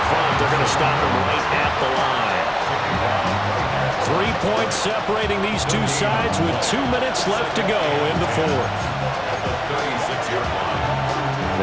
front, they're going to stop him right at the line. 3 points separating these two sides with 2 minutes left to go in the fourth.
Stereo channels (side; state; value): both; identical; correlation 1.00